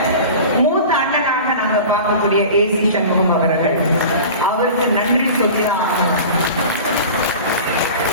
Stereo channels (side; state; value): both; inverted; correlation -0.36